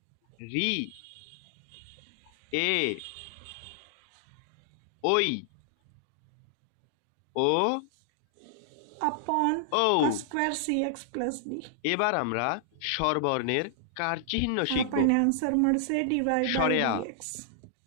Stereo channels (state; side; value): different; both; correlation -0.01